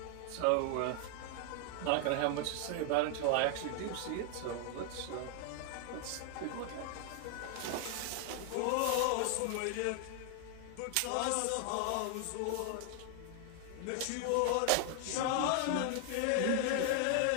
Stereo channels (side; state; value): both; different; correlation 0.00